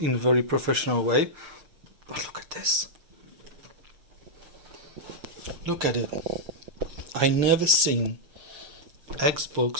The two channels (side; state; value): left; late; 6.6 ms